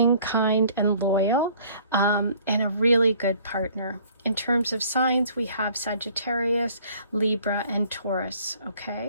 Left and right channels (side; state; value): both; inverted; correlation -0.56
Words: kind, and loyal. And a really good partner. In terms of signs, we have Sagittarius, Libra, and Taurus.